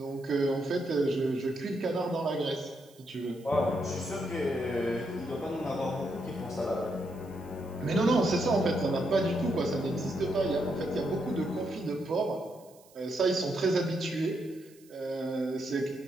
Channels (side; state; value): right; noise; hiss, 27 dB below the sound